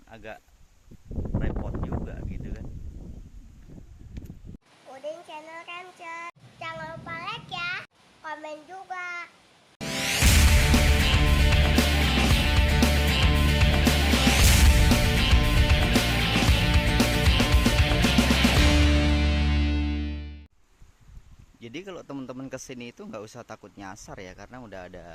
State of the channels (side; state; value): both; identical; correlation 1.00